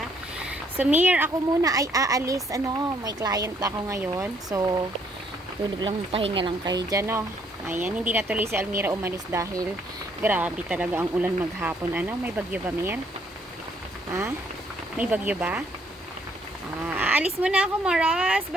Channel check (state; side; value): normal; both; correlation 0.67